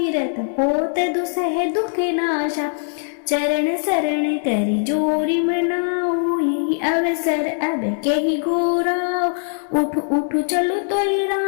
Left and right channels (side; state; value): right; silent; digital silence